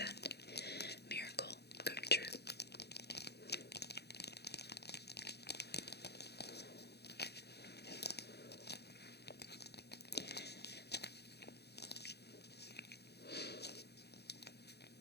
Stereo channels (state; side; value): late; right; 0.48 ms